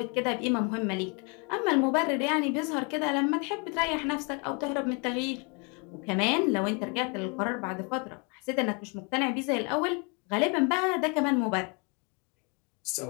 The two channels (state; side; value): quieter; right; 33.4 dB